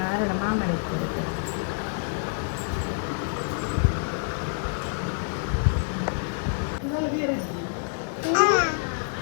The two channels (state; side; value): silent; right; digital silence